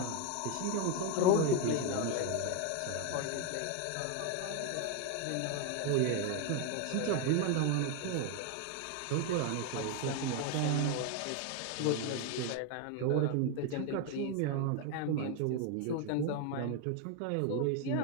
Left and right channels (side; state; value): both; different; correlation 0.01